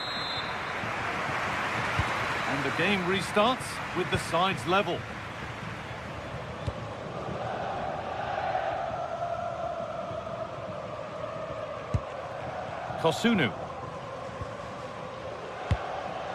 And the game restarts with the sides level. Kosunu.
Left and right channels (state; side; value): identical; both; correlation 1.00